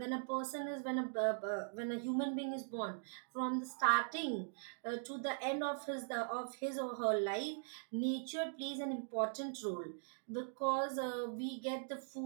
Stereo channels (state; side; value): silent; left; digital silence